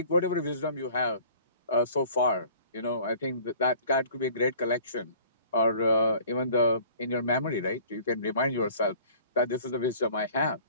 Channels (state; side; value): inverted; both; correlation -0.50